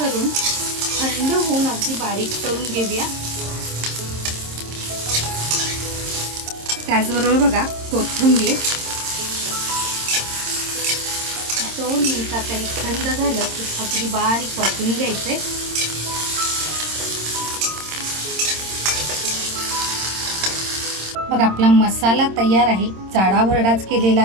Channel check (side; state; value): left; late; 26 ms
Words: थंड होऊन अगदी बारीक करून घेऊया. त्याचबरोबर बघा कोथिंबीर 2 मिनिटात हे थंड झालं की अगदी बारीक वाटून घ्यायचे. बघा आपला मसाला तयार आहे, जाडा भरडाच केलेला